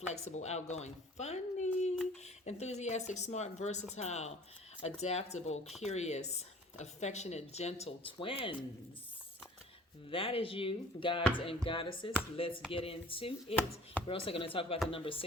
outgoing, funny, enthusiastic, smart, versatile, adaptable, curious, affectionate, gentle twins. That is you, gods and goddesses. Let's get into it. We're also going to talk about the number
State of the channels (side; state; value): both; normal; correlation 0.50